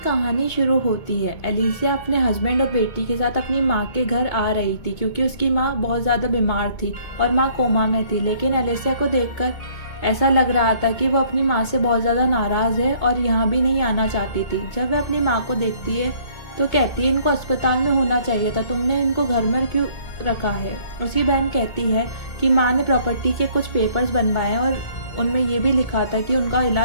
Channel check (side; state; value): right; late; 2.2 ms